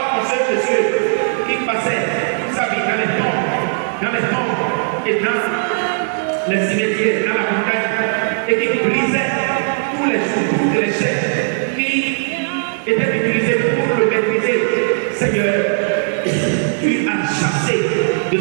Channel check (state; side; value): silent; left; digital silence